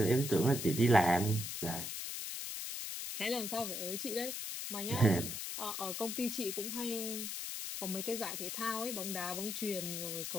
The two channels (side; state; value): left; noise; hiss, 5 dB below the sound